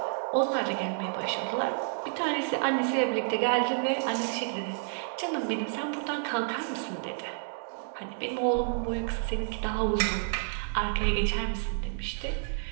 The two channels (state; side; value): silent; left; digital silence